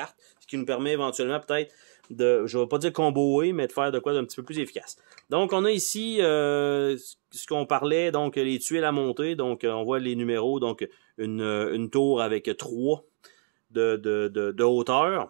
ce qui nous permet éventuellement peut-être de, je ne vais pas dire comboer, mais de faire de quoi d'un petit peu plus efficace. Donc, on a ici ce qu'on parlait, donc les tuiles à monter. Donc, on voit les numéros, donc une tour avec 3 de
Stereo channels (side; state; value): left; silent; 60 dB below the other